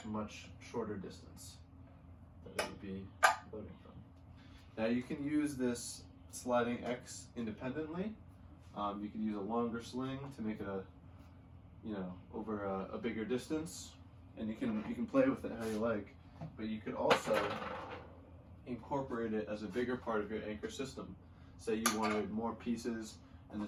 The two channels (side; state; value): both; identical; correlation 1.00